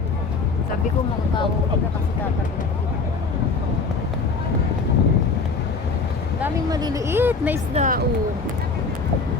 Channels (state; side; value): quieter; right; 4.4 dB